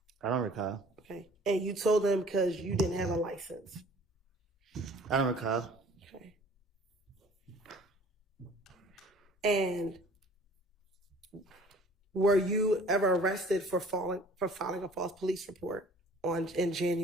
I don't recall. Okay. And you told them because you didn't have a license. I don't recall. Okay. And were you ever arrested for filing a false police report in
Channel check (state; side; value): normal; both; correlation 0.50